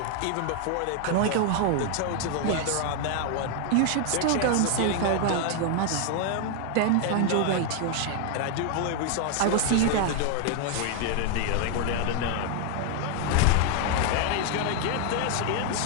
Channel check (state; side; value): different; both; correlation 0.00